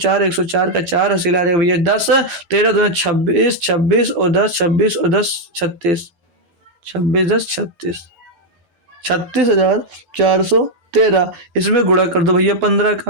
104 का 4 हासिल आ जाएगा भैया 10, 13 2 26, 26 और 10, 26 और 10 36, 26 10 36, 36,413। इसमें गुणा कर दो भैया 15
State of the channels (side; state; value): left; late; 12 ms